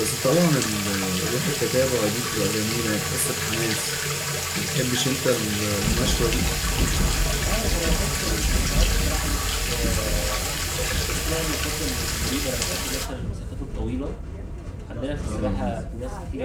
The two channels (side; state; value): both; identical; correlation 1.00